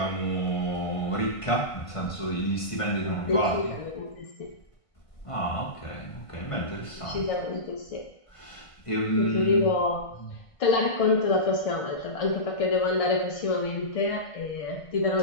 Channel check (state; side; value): late; right; 1.5 ms